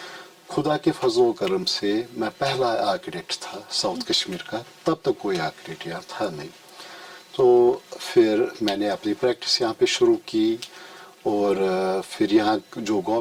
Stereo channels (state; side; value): identical; both; correlation 1.00